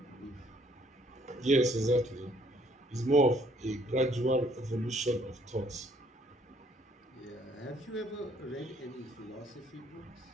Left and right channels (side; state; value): both; normal; correlation 0.64